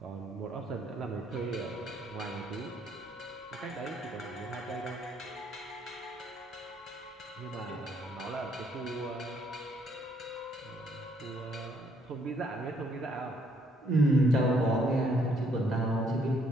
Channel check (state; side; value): normal; both; correlation 0.68